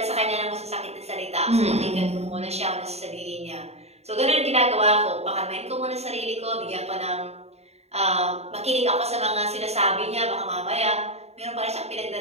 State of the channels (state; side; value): late; left; 0.31 ms